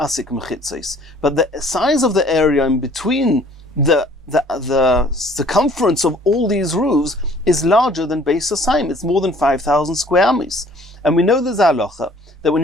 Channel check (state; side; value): normal; both; correlation 0.55